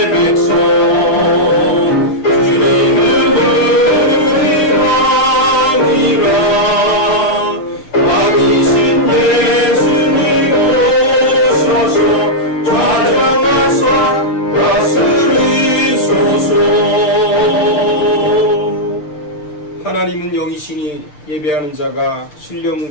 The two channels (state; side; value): late; right; 6.7 ms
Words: 하나님은 영이시니 예배하는 자가